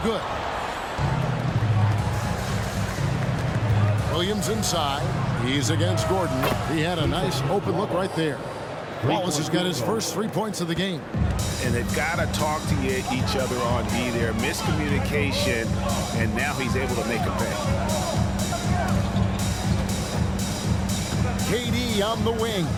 good. Williams inside. He's against Gordon. He had a nice open look right there. Wallace has got his first 3 points of the game. And they've got to talk to each other on D there. Miscommunication, and now he's able to make a pay. KD on the wing.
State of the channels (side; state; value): both; identical; correlation 1.00